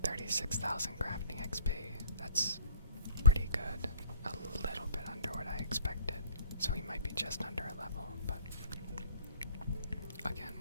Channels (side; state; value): both; inverted; correlation -0.54